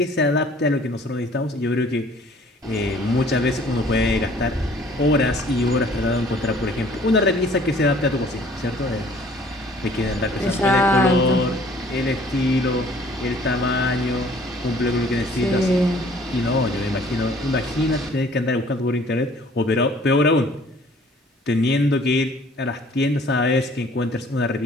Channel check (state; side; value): normal; both; correlation 0.55